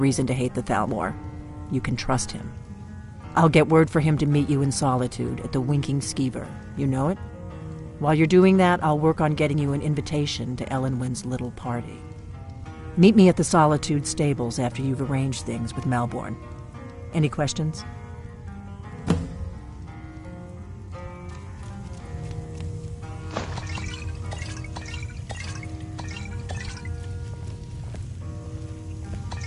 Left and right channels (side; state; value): both; identical; correlation 1.00